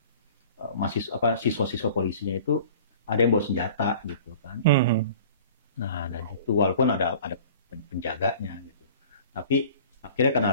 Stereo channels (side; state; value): both; inverted; correlation -0.45